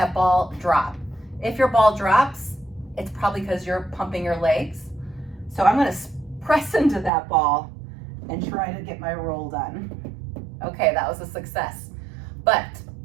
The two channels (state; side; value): drops out; left; at 7.1 s